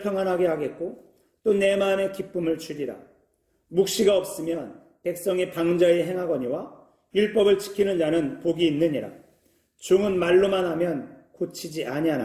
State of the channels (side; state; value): both; identical; correlation 1.00